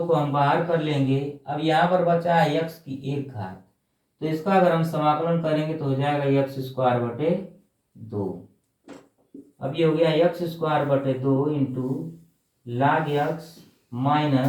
को हम बाहर कर लेंगे। अब यहाँ पर बचा है x की 1 घात, तो इसका अगर हम समाकलन करेंगे तो हो जाएगा x स्क्वायर बटे 2। अब ये हो गया x स्क्वायर बटे 2 into log x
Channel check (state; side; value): identical; both; correlation 1.00